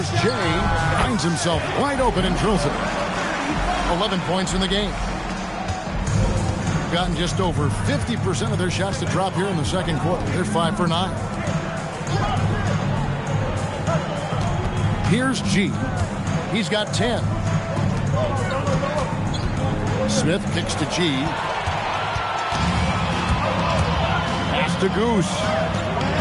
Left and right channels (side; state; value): both; identical; correlation 1.00